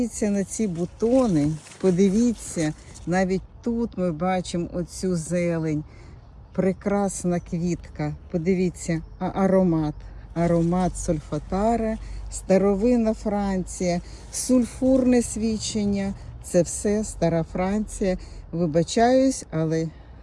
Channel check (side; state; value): both; identical; correlation 1.00